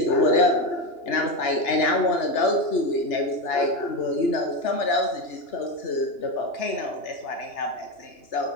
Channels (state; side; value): late; right; 2.9 ms